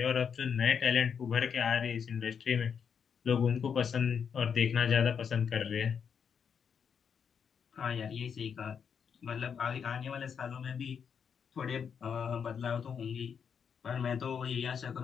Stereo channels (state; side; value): quieter; right; 7.0 dB